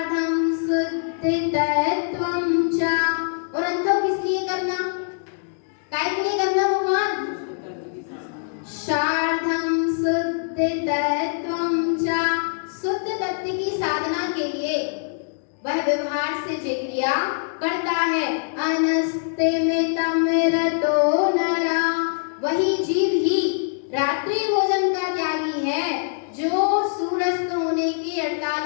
शुद्धितत्वं च और अंत किस लिए करना? काय के लिए करना भगवान? सार्धं शुद्धितत्वं च शुद्ध तत्व की साधना के लिए वह व्यवहार से जो क्रिया करता है। अनस्तमितं रतो नरा वही जीव ही रात्रि भोजन का त्यागी है जो सूर्यास्त होने के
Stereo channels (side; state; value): right; silent; digital silence